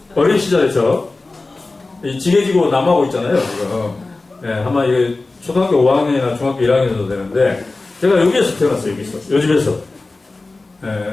어린 시절에 지게지고 남하고 있잖아요, 지금. 아마 이게 초등학교 5학년이나 중학교 1학년 정도 되는데, 제가 여기에서 태어났어요, 여기서. 요 집에서.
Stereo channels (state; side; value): quieter; right; 3.4 dB